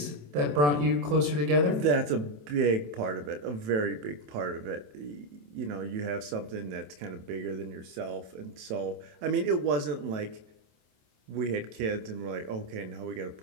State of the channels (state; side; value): late; left; 27 ms